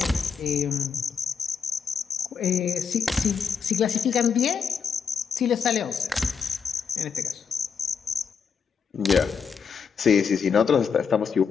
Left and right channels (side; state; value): right; quieter; 6.3 dB